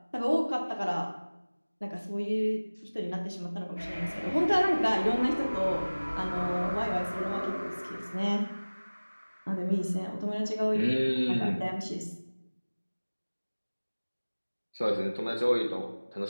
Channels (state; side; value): inverted; both; correlation -1.00